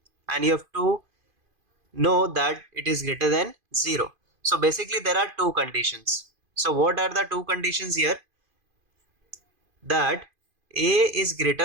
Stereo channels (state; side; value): late; left; 2.5 ms